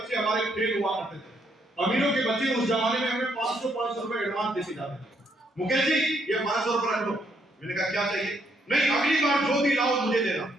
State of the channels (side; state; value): both; normal; correlation 0.73